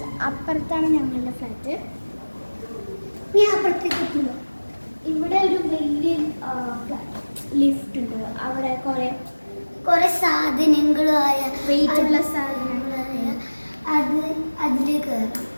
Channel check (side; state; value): both; inverted; correlation -1.00